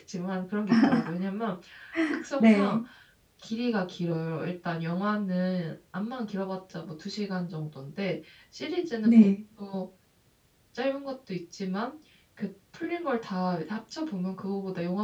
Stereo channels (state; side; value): identical; both; correlation 1.00